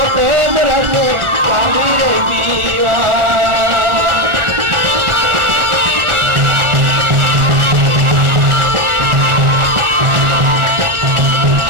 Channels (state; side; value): late; left; 1.4 ms